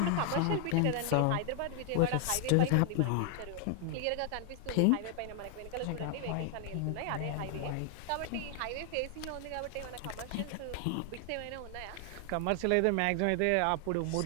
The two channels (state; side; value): different; both; correlation 0.00